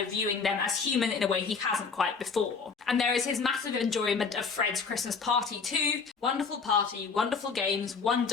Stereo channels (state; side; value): quieter; right; 5.1 dB